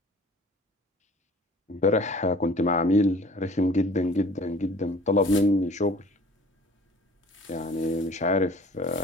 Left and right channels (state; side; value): normal; both; correlation 0.49